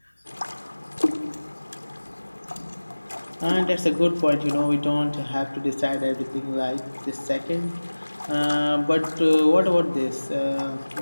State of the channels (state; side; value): inverted; both; correlation -1.00